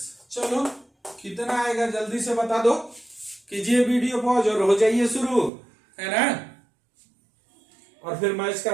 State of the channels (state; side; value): drops out; left; at 5.5 s